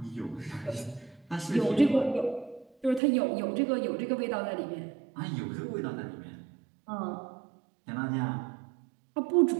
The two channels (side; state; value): left; drops out; at 3.0 s